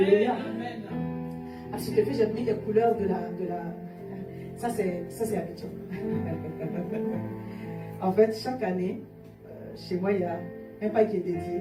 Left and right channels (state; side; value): identical; both; correlation 1.00